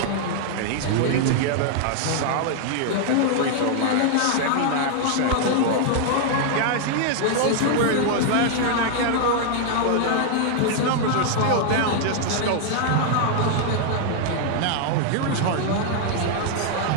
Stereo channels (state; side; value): different; both; correlation 0.00